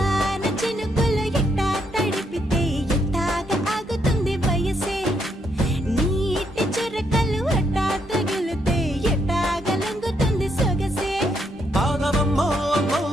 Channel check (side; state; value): both; normal; correlation 0.75